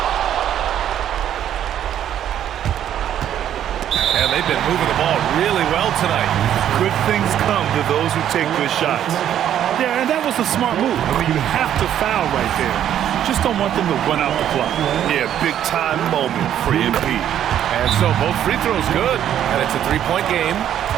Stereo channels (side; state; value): left; quieter; 10.5 dB